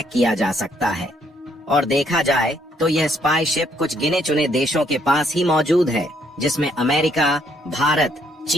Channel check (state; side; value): normal; both; correlation 0.69